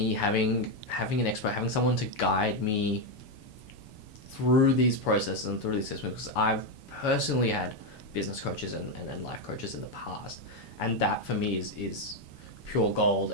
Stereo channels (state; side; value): late; right; 7.0 ms